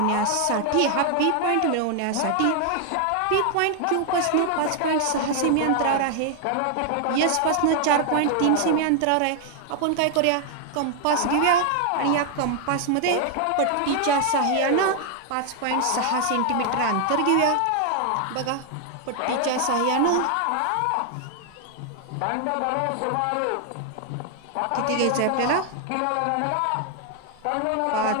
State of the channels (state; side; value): different; both; correlation 0.00